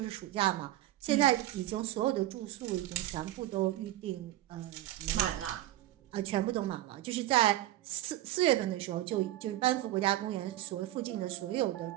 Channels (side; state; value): left; quieter; 14.9 dB